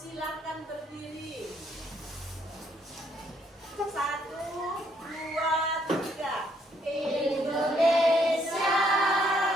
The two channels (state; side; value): normal; both; correlation 0.69